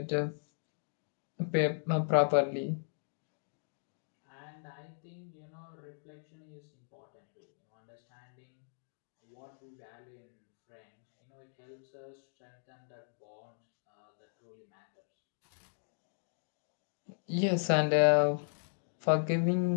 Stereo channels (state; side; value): silent; right; digital silence